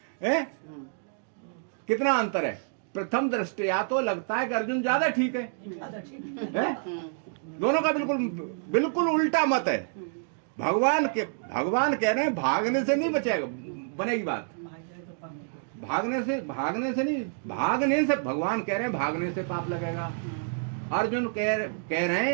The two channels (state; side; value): silent; left; digital silence